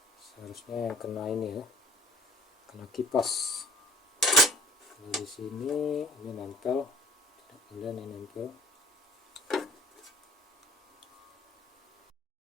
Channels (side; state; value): both; normal; correlation 0.50